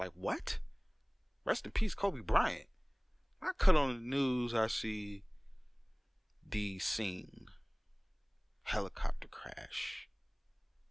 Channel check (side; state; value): both; identical; correlation 1.00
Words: what? Rest in peace, Kobe Bryant. I cut on the news, I see the scene. Helicopter crash.